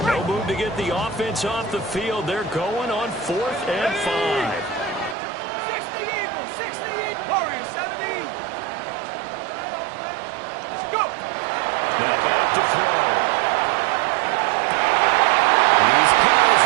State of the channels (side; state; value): left; drops out; at 5.2 s